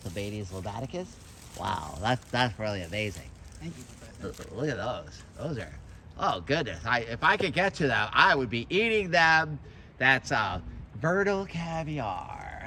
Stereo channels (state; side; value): identical; both; correlation 1.00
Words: lobaticus. Wow, that's really amazing. Thank you, Professor. Look at those. Those are, oh goodness. If I could get to them, I would be eating them. That's Vernal